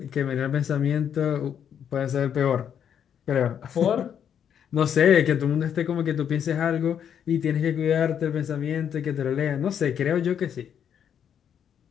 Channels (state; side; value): quieter; right; 8.6 dB